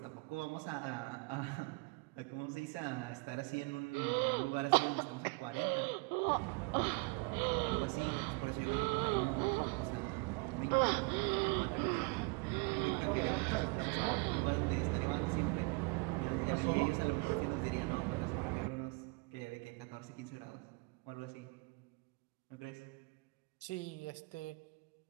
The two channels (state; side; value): quieter; left; 29.2 dB